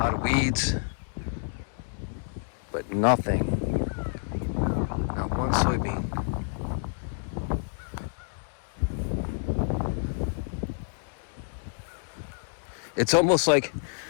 of weeds, but nothing. Not one soybean. It's almost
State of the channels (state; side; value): silent; right; digital silence